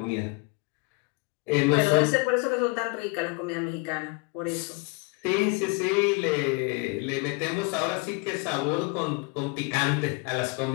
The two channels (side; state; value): right; quieter; 29.3 dB